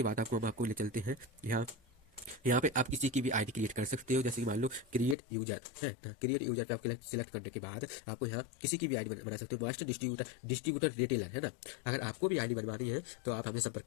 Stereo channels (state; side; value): drops out; right; at 5.2 s